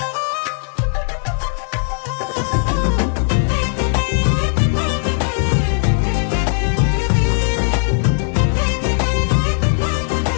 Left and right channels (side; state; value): right; silent; digital silence